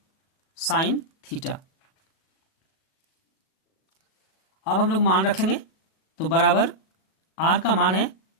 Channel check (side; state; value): right; late; 37 ms